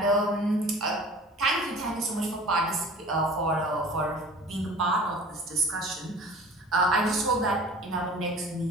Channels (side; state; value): both; normal; correlation 0.43